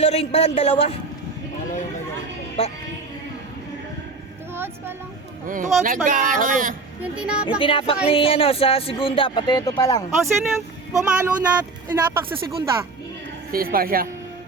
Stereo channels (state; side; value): quieter; left; 4.0 dB